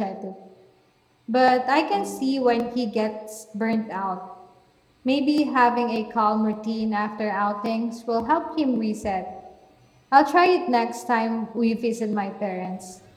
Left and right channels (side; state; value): both; identical; correlation 1.00